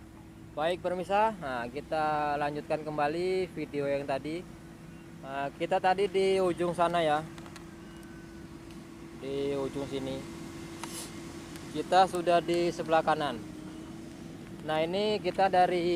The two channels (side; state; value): both; identical; correlation 1.00